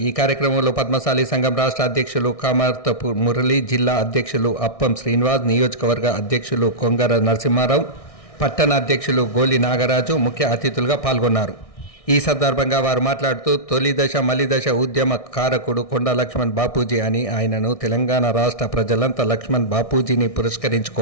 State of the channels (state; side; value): late; right; 1.6 ms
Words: ఈ కార్యక్రమంలో పద్మశాలి సంఘం రాష్ట్ర అధ్యక్షులు కామర్తపు మురళి, జిల్లా అధ్యక్షులు అప్పం శ్రీనివాస్, నియోజకవర్గ అధ్యక్షులు కొంగర నరసింహారావు, పట్టణ అధ్యక్షులు గోలి నాగరాజు ముఖ్య అతిథులుగా పాల్గొన్నారు. ఈ సందర్భంగా వారు మాట్లాడుతూ తొలి దశ మలి దశ ఉద్యమ కారకుడు కొండా లక్ష్మణ్ బాపూజీ అని ఆయనను తెలంగాణ రాష్ట్ర ప్రజలంతా లక్ష్మణ్ బాపూజీని